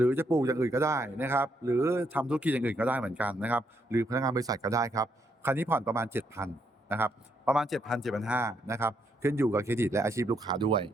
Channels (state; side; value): normal; both; correlation 0.75